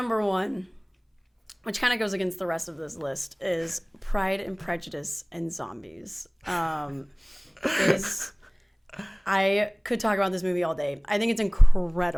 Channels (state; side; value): identical; both; correlation 1.00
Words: one, which kind of goes against the rest of this list, is Pride and Prejudice and Zombies. I could talk about this movie all day. I think it's